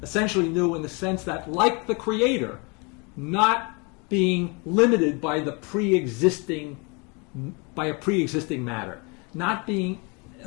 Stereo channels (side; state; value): right; quieter; 30.7 dB